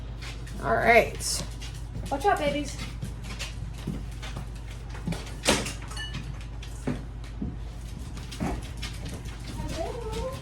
All right. Watch out, babies.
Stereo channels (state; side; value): identical; both; correlation 1.00